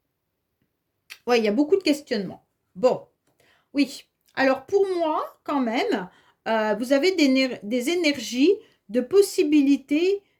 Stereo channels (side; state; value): both; identical; correlation 1.00